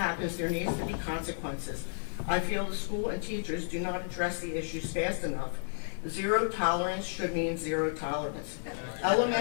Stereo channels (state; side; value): silent; right; 56 dB below the other